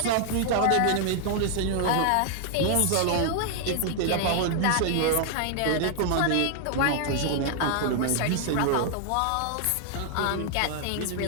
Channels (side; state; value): both; different; correlation 0.00